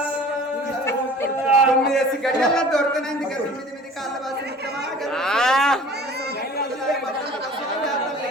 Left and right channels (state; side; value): normal; both; correlation 0.45